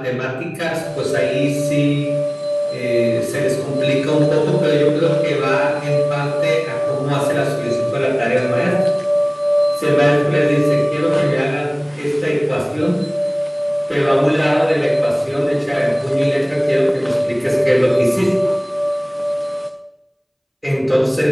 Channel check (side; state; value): both; identical; correlation 1.00